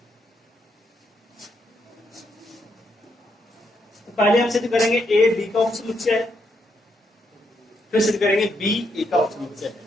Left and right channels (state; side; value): normal; both; correlation 0.77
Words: तो पहले हम सिद्ध करेंगे ए बी का उपसमुच्चय है, फिर सिद्ध करेंगे बी ए का उपसमुच्चय है।